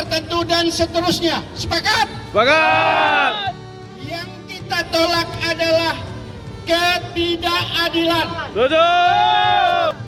dan seterusnya. Sepakat? Sepakat. Yang kita tolak adalah ketidakadilan. Tujuh.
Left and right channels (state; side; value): identical; both; correlation 1.00